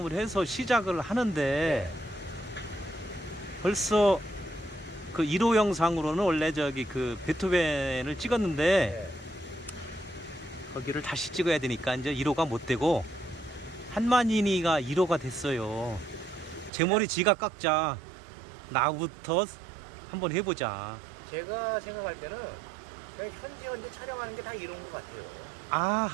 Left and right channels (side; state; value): left; drops out; at 16.7 s